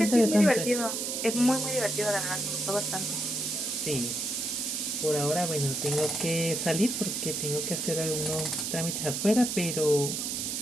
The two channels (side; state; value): right; noise; hiss, 2 dB below the sound